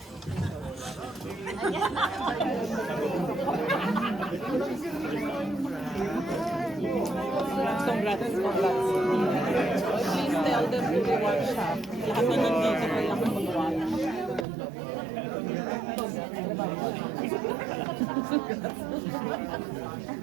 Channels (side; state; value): left; drops out; at 14.5 s